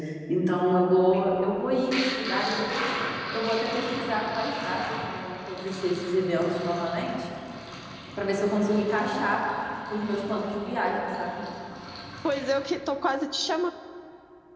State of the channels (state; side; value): identical; both; correlation 1.00